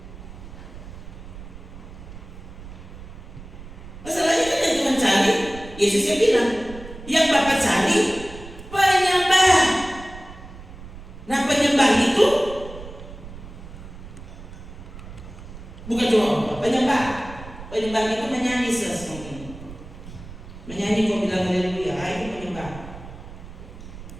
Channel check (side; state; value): right; noise; rumble, 14 dB below the sound